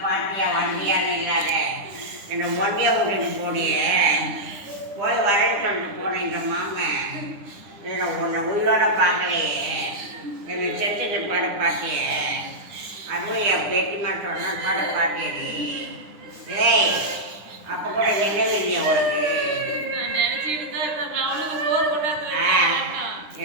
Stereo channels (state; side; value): late; left; 10 ms